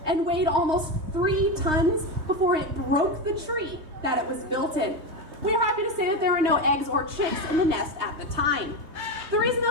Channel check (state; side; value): late; left; 3.2 ms